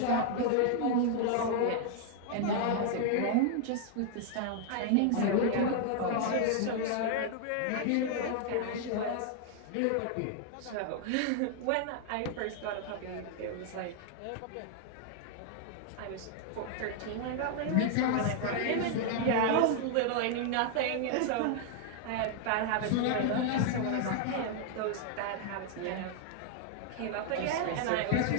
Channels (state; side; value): different; both; correlation 0.00